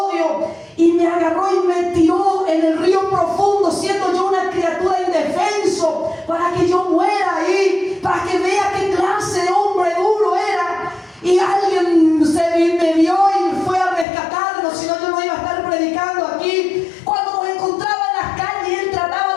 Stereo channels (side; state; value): right; drops out; at 14.1 s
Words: y me agarró y me tiró en el río profundo, siendo yo una criatura indefenso, para que yo muera ahí, para que vea qué clase de hombre duro era. Y alguien me vio y fue a rescatarnos, si no yo no iba a estar predicando aquí. Cuando nos encontraba en las calles, él trataba